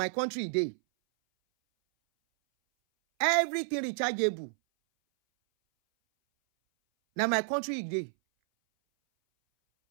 country dey. Everything rechargeable. Now my country dey.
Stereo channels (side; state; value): left; silent; 58 dB below the other